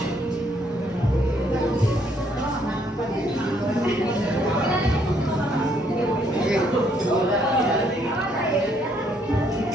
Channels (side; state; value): both; normal; correlation 0.69